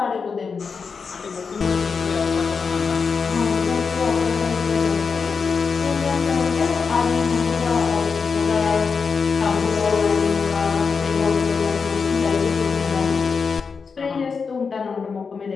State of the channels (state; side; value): quieter; right; 5.3 dB